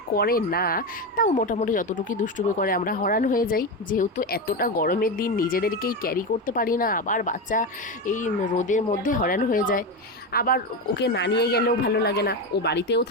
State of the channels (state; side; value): normal; both; correlation 0.16